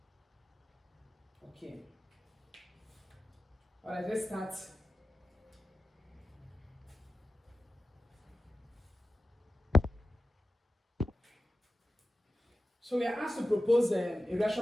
Okay. Alright, let's start. So we are asked to propose a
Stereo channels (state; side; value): normal; both; correlation 0.93